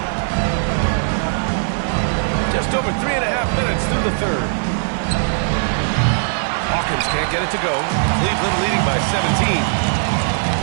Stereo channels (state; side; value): silent; left; 61 dB below the other